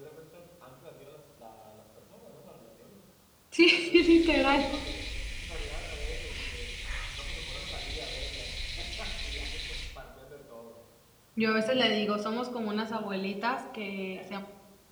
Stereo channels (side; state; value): both; identical; correlation 1.00